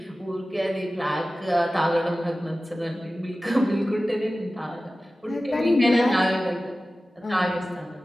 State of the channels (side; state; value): both; normal; correlation 0.96